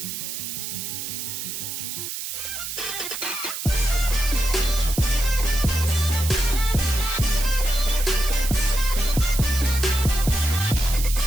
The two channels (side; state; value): right; noise; hiss, 6 dB below the sound